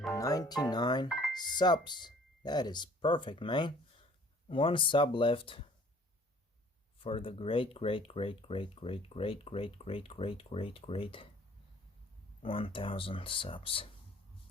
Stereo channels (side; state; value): both; normal; correlation 0.54